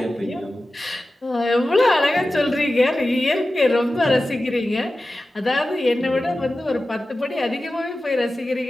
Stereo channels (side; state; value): both; normal; correlation 0.94